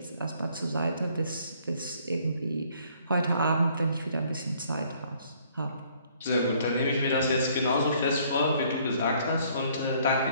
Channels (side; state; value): both; inverted; correlation -0.62